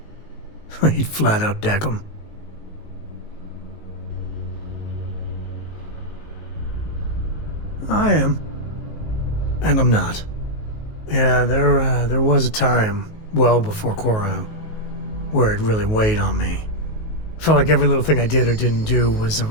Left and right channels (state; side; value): late; right; 19 ms